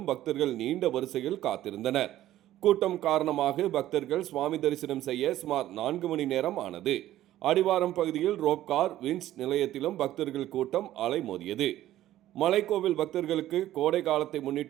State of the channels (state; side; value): quieter; left; 13.7 dB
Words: பக்தர்கள் நீண்ட வரிசையில் காத்திருந்தனர். கூட்டம் காரணமாக பக்தர்கள் சுவாமி தரிசனம் செய்ய சுமார் 4 மணி நேரம் ஆனது. அடிவாரம் பகுதியில் ரோப்கார், வின்ஸ் நிலையத்திலும் பக்தர்கள் கூட்டம் அலைமோதியது. மலைக்கோவில் பக்தர்களுக்கு கோடை காலத்தை